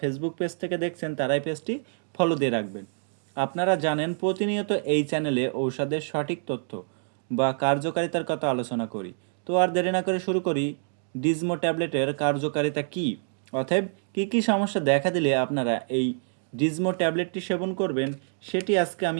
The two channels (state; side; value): silent; left; digital silence